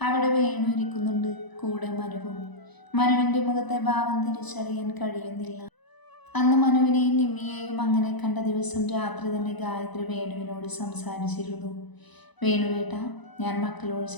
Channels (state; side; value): late; right; 1.0 ms